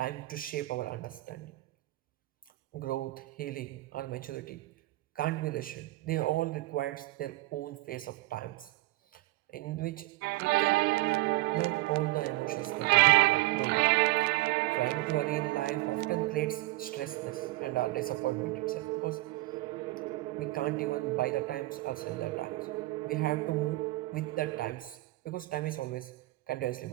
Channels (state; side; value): quieter; left; 19.4 dB